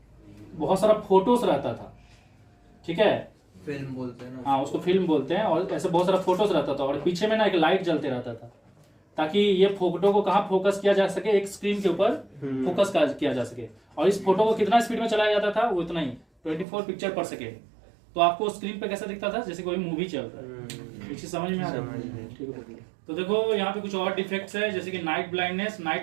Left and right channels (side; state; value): left; drops out; at 16.7 s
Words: बहुत सारा फोटोज रहता था, ठीक है, फिल्म बोलते हैं ना, हाँ उसको फिल्म बोलते हैं। और ऐसे बहुत सारा फोटोज रहता था, और पीछे में ना एक लाइट जलते रहता था, ताकि ये फोटो को कहाँ फोकस किया जा सके, एक स्क्रीन के ऊपर फोकस किया जा सके। और इस फोटो को कितना स्पीड में चलाया जाता था, वो इतना ही 24 पिक्चर पर सेकेंड। तो आपको स्क्रीन पे कैसा दिखता था, जैसे कोई मूवी चल रहा है। ये चीज समझ में आ रही है? ठीक है। तो देखो यहाँ पे कुछ और डिफेक्ट्स है, जैसे कि नाइट ब्लाइंडनेस।